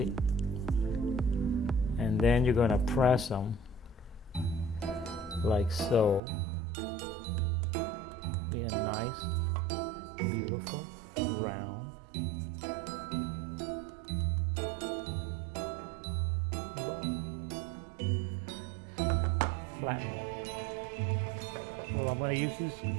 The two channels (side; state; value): left; drops out; at 6.2 s